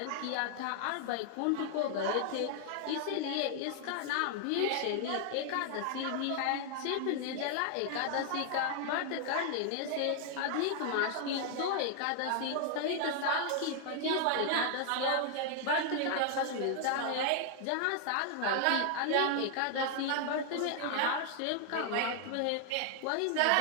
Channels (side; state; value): both; different; correlation 0.00